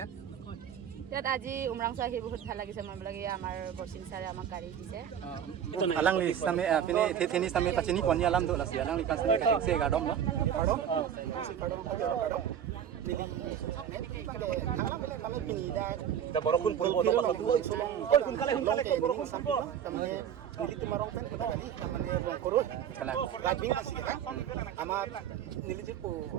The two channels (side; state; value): left; quieter; 9.2 dB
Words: ইয়াত আজি উমৰাংচু আহি বহুত ভাল লাগিছে মই বোলে আমাৰ বৰচিং ছাৰে আমাক গাড়ী দিছে alang li same pini theni same pachini poni alam do lasi alang li pan same kating se gadom lo Kami pinida. Da borokun pun bodo ka tu oi kun kale ko borokun sampo Kami nili tumarong pen kita kali kami rong koroi. kala Rabing kasi kan. Ama nili jipo